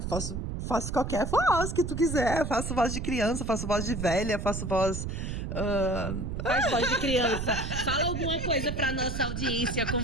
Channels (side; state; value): right; noise; rumble, 4 dB below the sound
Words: qualquer voz que tu quiser. Faço voz de criança, faço voz de velha, faço voz... Faz voz de criança. Fala alguma coisa pra nossa audiência com